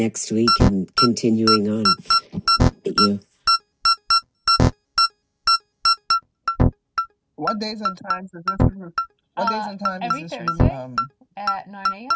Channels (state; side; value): identical; both; correlation 1.00